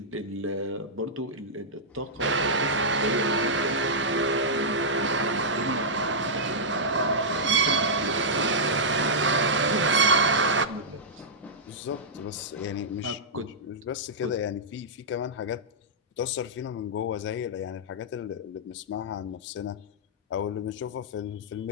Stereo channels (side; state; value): both; normal; correlation -0.11